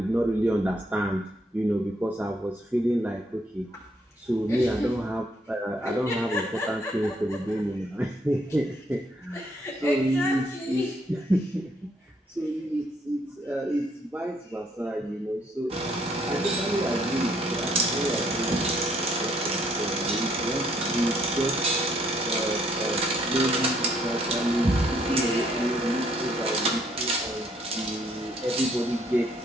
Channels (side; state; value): both; normal; correlation 0.68